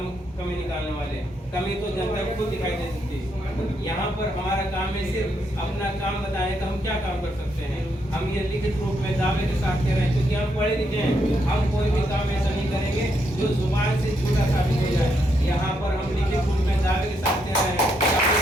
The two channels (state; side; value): normal; both; correlation 0.77